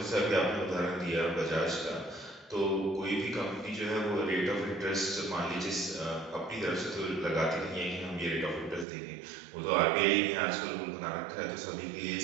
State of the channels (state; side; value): drops out; left; at 8.8 s